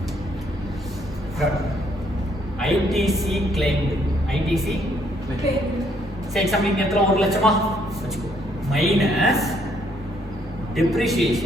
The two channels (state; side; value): normal; both; correlation 0.69